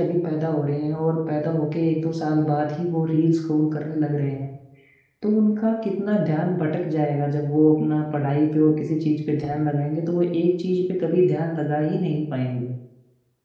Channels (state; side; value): identical; both; correlation 1.00